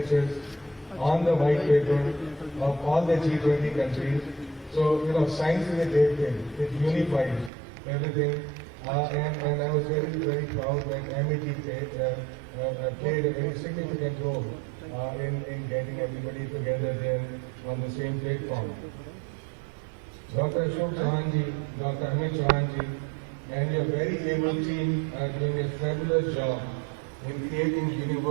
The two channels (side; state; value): left; drops out; at 7.5 s